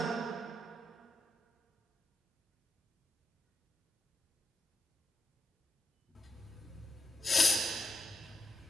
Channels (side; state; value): both; normal; correlation 0.85